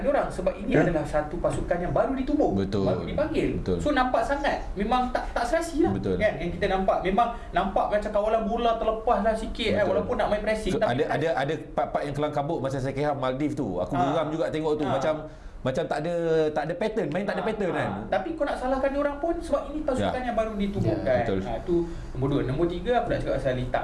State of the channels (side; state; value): both; identical; correlation 1.00